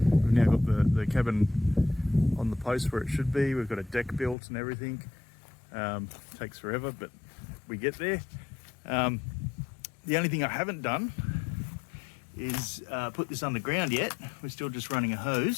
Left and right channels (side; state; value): right; drops out; at 4.4 s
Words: got the cabin on the post where it should be. We've got a deck built and everything. Takes forever, but we get there. The only thing I haven't done is put this underground yet. We're still just running a